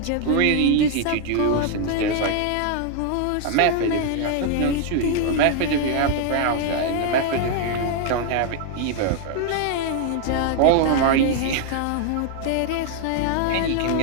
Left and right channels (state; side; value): different; both; correlation 0.00